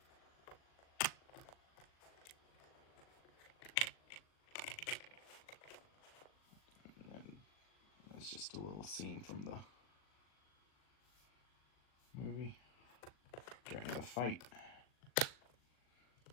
And then it's just a little scene from the movie during the fight.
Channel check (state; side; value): late; right; 39 ms